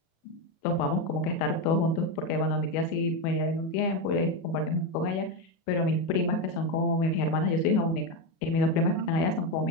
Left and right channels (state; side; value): late; right; 37 ms